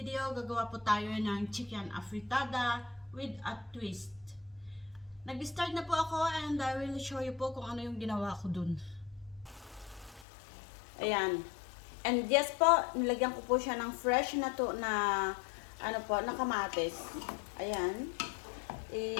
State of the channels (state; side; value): drops out; right; at 10.2 s